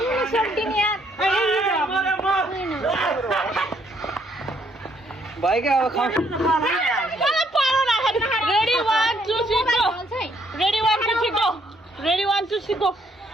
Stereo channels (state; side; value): normal; both; correlation 0.69